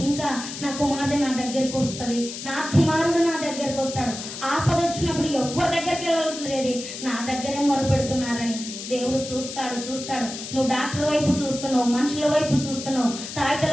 నా కుమార్తె నా దగ్గరికి వస్తుంది, నా కుమారుడు నా దగ్గరికి వస్తాడు. ఆపద వచ్చినప్పుడు ఎవరి దగ్గరికి వెళ్ళలేదు, నా దగ్గరే మొరపెడుతున్నారని దేవుడు చూస్తాడు. నువ్వు డాక్టర్ వైపు చూస్తున్నావు, మనుషుల వైపు చూస్తున్నావు,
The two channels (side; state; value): left; noise; hiss, 9 dB below the sound